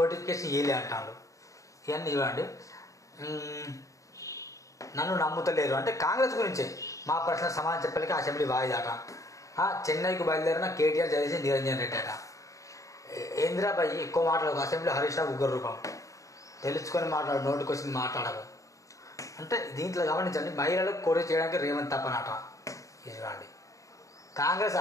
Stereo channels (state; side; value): late; right; 0.16 ms